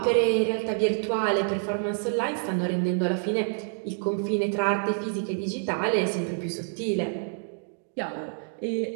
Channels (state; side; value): silent; left; 60 dB below the other